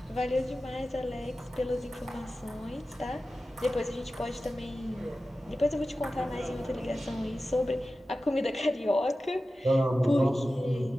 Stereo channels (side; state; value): both; normal; correlation 0.94